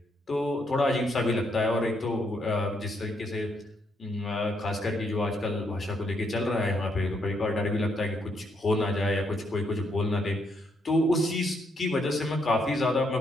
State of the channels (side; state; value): both; normal; correlation 0.75